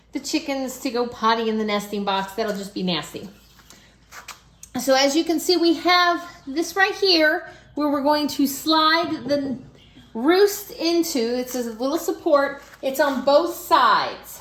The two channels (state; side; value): identical; both; correlation 1.00